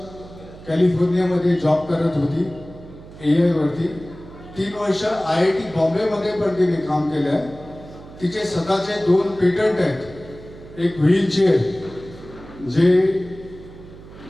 कॅलिफोर्नियामध्ये जॉब करत होती AI वरती. 3 वर्ष IIT बॉम्बेमध्ये पण तिने काम केलं आहे. तिचे स्वतःचे 2 पेटंट आहेत. एक व्हीलचेअर जे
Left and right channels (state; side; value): noise; right; hum, 18 dB below the sound